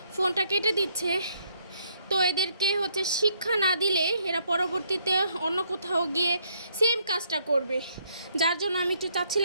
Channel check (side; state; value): both; inverted; correlation -0.70